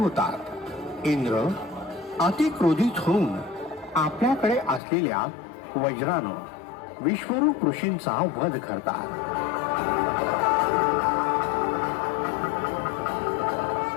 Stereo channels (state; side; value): drops out; right; at 4.8 s